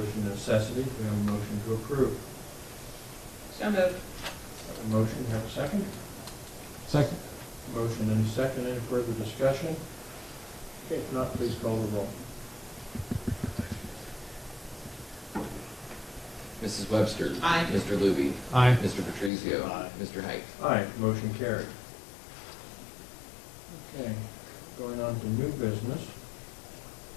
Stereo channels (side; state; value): right; drops out; at 19.3 s